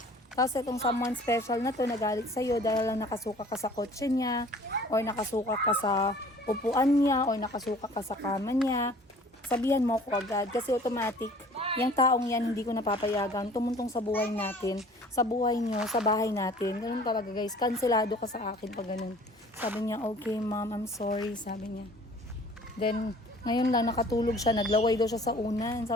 Tapos itong someone special na to nagalit sa'yo dahil lang nakasuka ka sa kotse niya, or nakasuka ka sa upuan niya, or nakasuka ka sa kama niya, sabihan mo ako agad. Kasi automatic, yung taong yan hindi ko napapayagan, tumuntong sa buhay natin, sa buhay nyo, sa bahay natin. Ganun talaga guys, kanselado ka sa akin pag ganun. Sabi niya, okay ma'am, I'm sorry, sabi niya. Then, ngayon lang nakatulog siya, naglaway daw siya sa unan.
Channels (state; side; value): normal; both; correlation 0.50